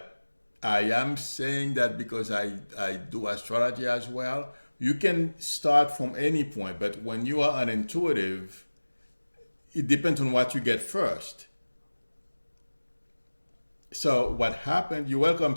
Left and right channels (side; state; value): both; inverted; correlation -1.00